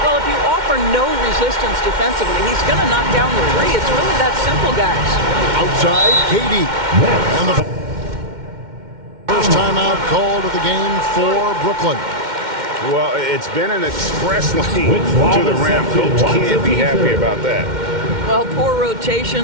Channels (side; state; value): left; late; 2.1 ms